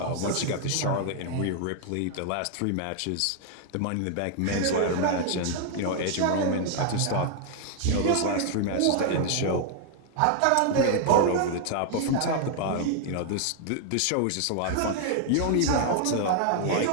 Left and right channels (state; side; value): different; both; correlation 0.00